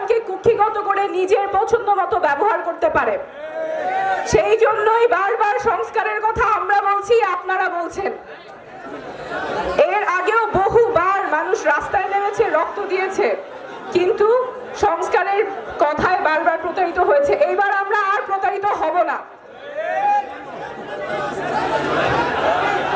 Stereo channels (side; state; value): both; identical; correlation 1.00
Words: কুক্ষিগত করে নিজের পছন্দ মতো ব্যবহার করতে পারে। সেই জন্যই বারবার সংস্কারের কথা আমরা বলছি, আপনারা বলছেন। এর আগেও বহুবার মানুষ রাস্তায় নেমেছে, রক্ত দিয়েছে, কিন্তু সংস্কারের কথায় বারবার প্রতারিত হয়েছে। এইবার আমরা আর প্রতারিত হব না।